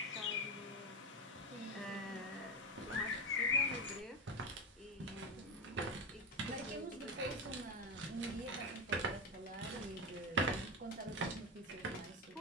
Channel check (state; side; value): normal; both; correlation 0.15